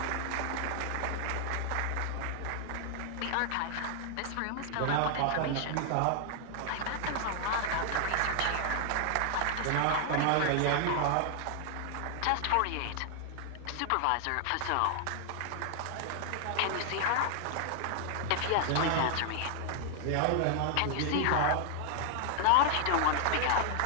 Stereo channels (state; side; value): different; both; correlation 0.00